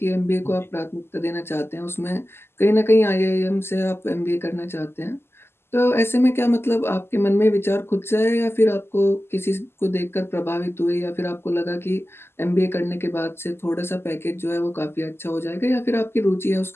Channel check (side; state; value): right; late; 0.12 ms